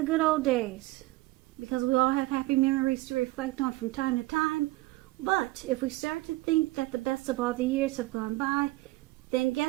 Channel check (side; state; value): left; quieter; 19.8 dB